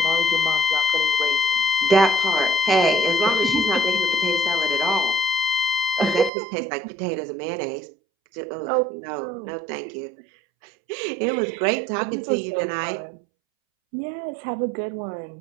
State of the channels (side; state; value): left; drops out; at 6.3 s